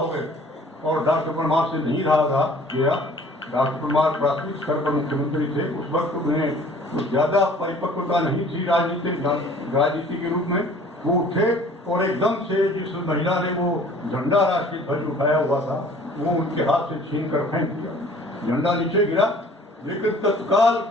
गए और डॉक्टर परमार से नहीं रहा था गया। डॉक्टर परमार प्राथमिक स्तर पर मुख्यमंत्री थे, उस वक्त उन्हें तो ज़्यादा परिपक्वता नहीं थी राजनीति के रूप में। वो उठे और एकदम से जिस महिला ने वो झंडा राष्ट्रीय ध्वज उठाया हुआ था वो उनके हाथ से छीन कर फेंक दिया, झंडा नीचे गिरा। लेकिन तत्काल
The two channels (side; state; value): both; normal; correlation 0.51